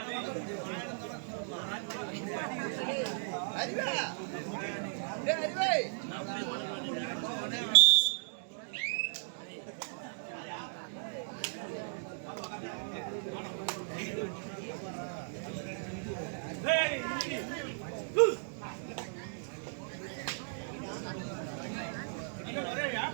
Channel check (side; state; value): left; silent; digital silence